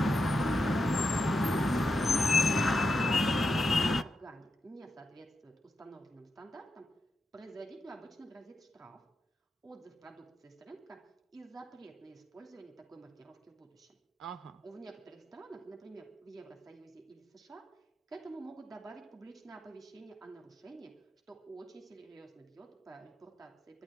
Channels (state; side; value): normal; both; correlation 0.86